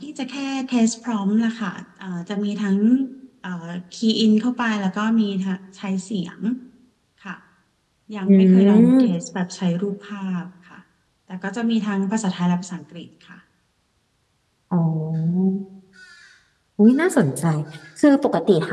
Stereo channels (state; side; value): identical; both; correlation 1.00